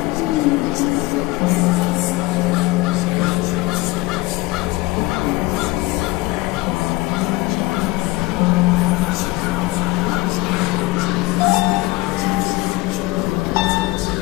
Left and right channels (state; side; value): quieter; right; 20.7 dB